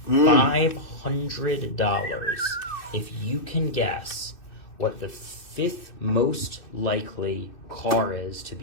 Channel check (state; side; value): late; right; 2.6 ms